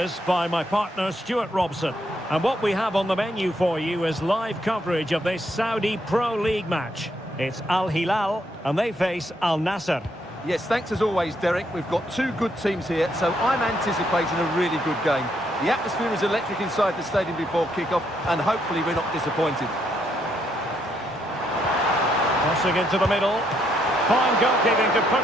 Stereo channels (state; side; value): normal; both; correlation 0.74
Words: by my partner Stuart Robson. And what we have on the menu for you is live coverage of this Saudi Pro League match. It's Al Hilal, and they face Al Nassr. Yes, thanks as always, Derek. We've got two good teams here, so I'm anticipating a really good game. The atmosphere is electric inside the stadium before kick-off, and hopefully we're not disappointed. Crossing into the middle. Fine goalkeeping to